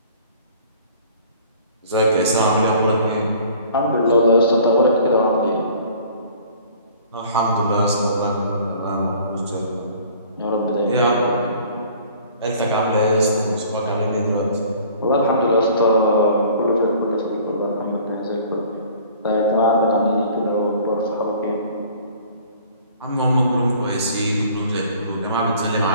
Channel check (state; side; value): inverted; both; correlation -0.51